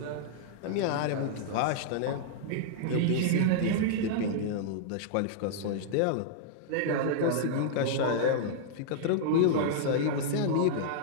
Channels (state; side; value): different; both; correlation -0.01